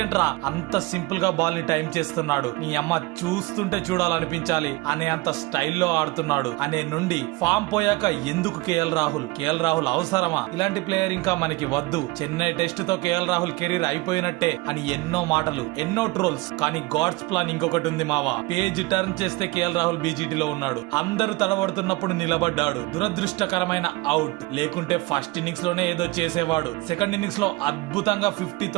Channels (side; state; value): left; quieter; 22.4 dB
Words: అంత సింపుల్ గా బాల్ ని టైం చేస్తున్నాడు, నీ అమ్మ చూస్తుంటే చూడాలనిపించాలి అనే అంత స్టైల్లో ఆడుతున్నాడు అనే నుండి ఫామ్ పోయాక ఎందుకు కేఎల్ రాహుల్ అవసరమా, ఇలాంటి ప్లేయర్ ఇంకా మనకి వద్దు, చెన్నై టెస్ట్ తో కేఎల్ రాహుల్ కెరీర్ అయిపోయినట్టే అని ఎన్నో మాటలు, ఎన్నో ట్రోల్స్. కానీ గాడ్స్ ప్లాన్ ఇంకొకటి ఉంది మావా. పేజ్ టర్న్ చేస్తే కేఎల్ రాహుల్ బీజీటీలో ఉన్నాడు, అందరూ తడబడుతున్నప్పుడు నిలబడ్డాడు, దురదృష్టకరమైన అవుట్. లేకుంటే ఫస్ట్ ఇన్నింగ్స్ లోనే ఏదో చేసేవాడు, సెకండ్ ఇన్నింగ్స్ లో అద్భుతంగా 50